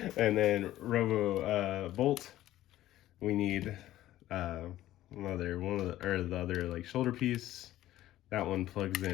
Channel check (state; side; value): quieter; right; 14.3 dB